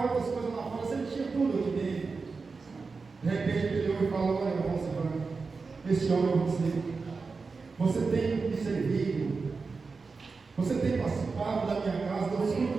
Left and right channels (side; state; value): left; quieter; 4.5 dB